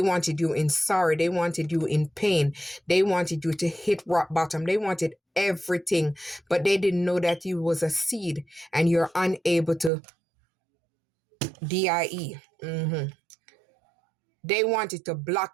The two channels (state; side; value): drops out; left; at 9.9 s